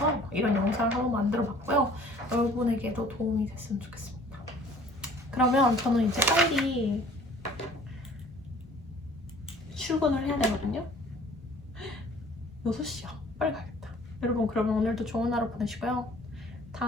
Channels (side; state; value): both; normal; correlation 0.52